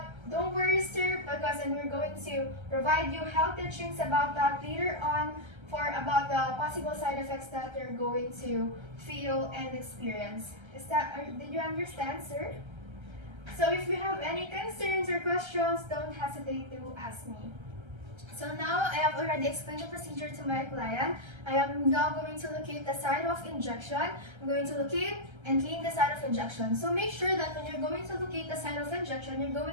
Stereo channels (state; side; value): late; left; 1.3 ms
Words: don't worry, sir, because we're going to provide you health teachings about that later on about the possible side effects that you're going to feel and experience. Did you understand, sir? So if you have any concerns or questions, don't hesitate to ask me. So now I have already explained the procedure to my client. I am now going to locate the site of injection. I'm going to locate and clean the site of injection. So make sure that when you're going to locate the site of injection, you're